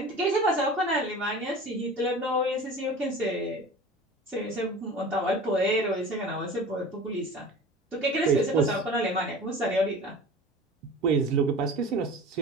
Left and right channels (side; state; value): both; normal; correlation 0.38